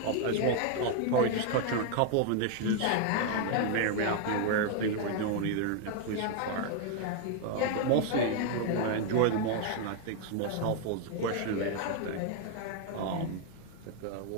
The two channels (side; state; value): both; different; correlation 0.01